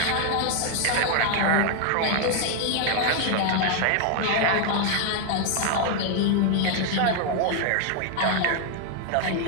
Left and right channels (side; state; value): both; different; correlation 0.00